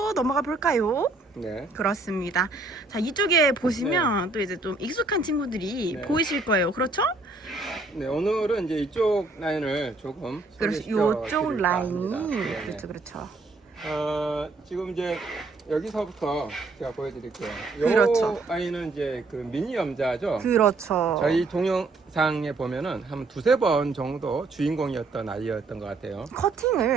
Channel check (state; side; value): quieter; left; 3.4 dB